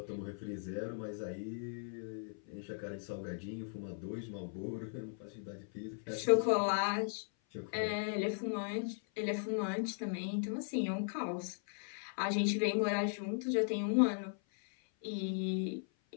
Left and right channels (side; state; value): right; silent; 53 dB below the other